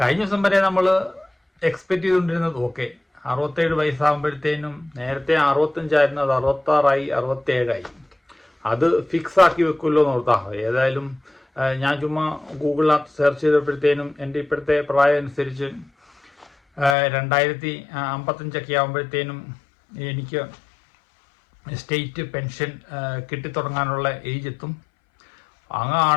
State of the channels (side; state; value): right; drops out; at 16.9 s